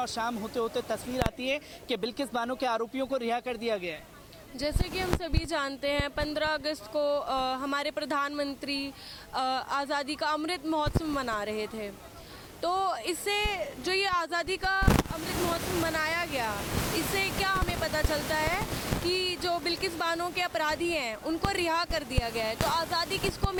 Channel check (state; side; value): identical; both; correlation 1.00